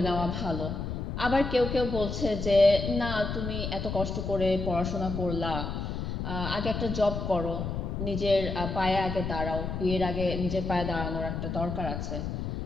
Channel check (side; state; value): left; noise; rumble, 4 dB below the sound